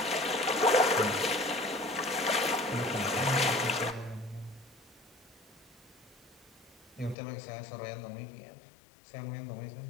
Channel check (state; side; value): drops out; right; at 7.2 s